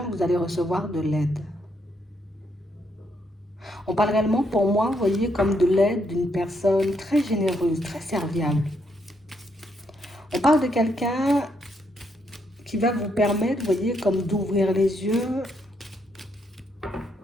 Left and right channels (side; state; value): both; normal; correlation 0.76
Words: vous allez recevoir de l'aide. On parle réellement pour moi, vous voyez, comme de l'aide d'une personne très généreuse, très serviable. On parle de quelqu'un qui va vous permettre, vous voyez, comme d'ouvrir les yeux